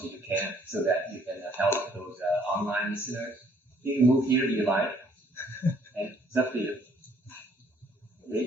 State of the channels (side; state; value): both; normal; correlation 0.63